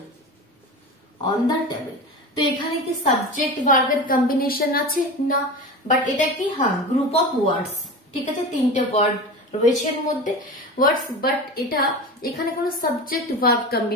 তো এখানে কি সাবজেক্ট ভার্বের কম্বিনেশন আছে? না, বাট এটা কি? হ্যাঁ, গ্রুপ অফ ওয়ার্ডস। ঠিক আছে, তিনটে ওয়ার্ড রয়েছে এর মধ্যে ওয়ার্ডস, বাট এটা এখানে কোনো সাবজেক্ট ভার্ব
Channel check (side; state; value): both; normal; correlation 0.29